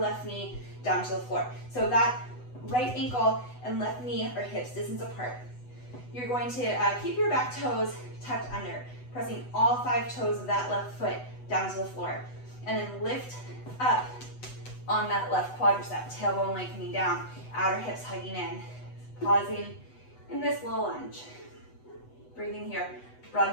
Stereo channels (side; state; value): right; late; 8.0 ms